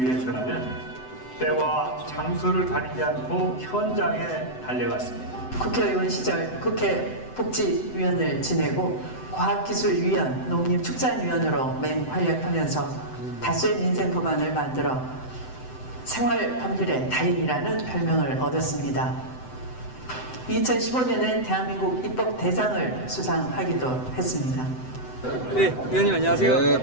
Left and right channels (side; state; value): right; late; 7.9 ms